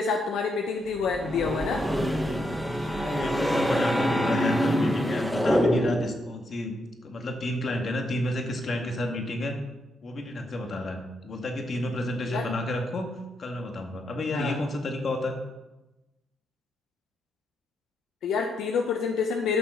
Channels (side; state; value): both; normal; correlation 0.80